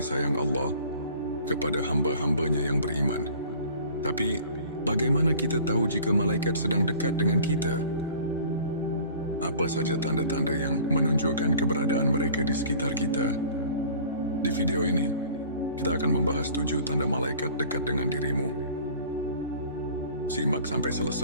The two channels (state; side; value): inverted; both; correlation -0.47